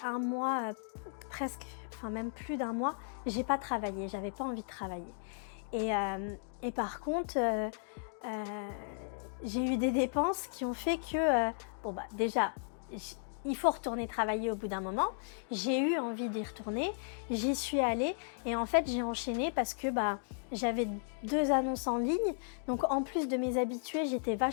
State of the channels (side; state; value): right; silent; digital silence